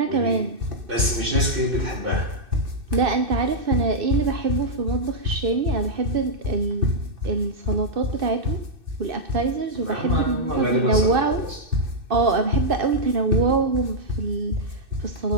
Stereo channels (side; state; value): left; late; 2.6 ms